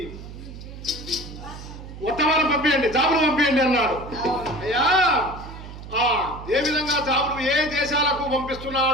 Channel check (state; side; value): noise; right; hum, 13 dB below the sound